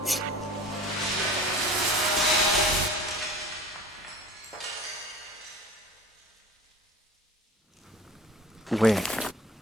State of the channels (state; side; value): normal; both; correlation 0.43